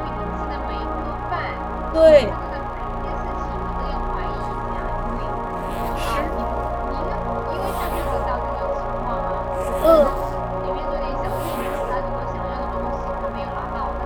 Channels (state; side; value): identical; both; correlation 1.00